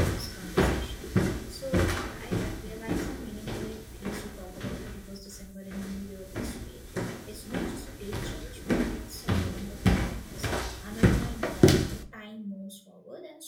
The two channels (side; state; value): both; identical; correlation 1.00